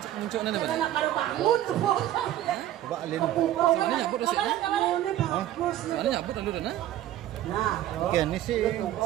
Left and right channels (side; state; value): left; quieter; 12.9 dB